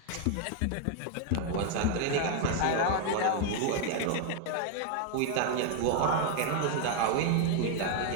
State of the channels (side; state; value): both; different; correlation 0.00